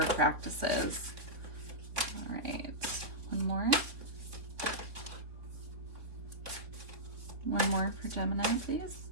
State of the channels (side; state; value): left; late; 3.6 ms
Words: practices. All right, one more. One more for Gemini, please.